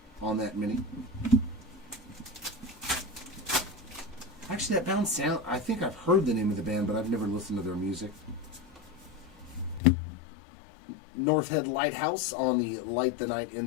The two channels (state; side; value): drops out; right; at 9.8 s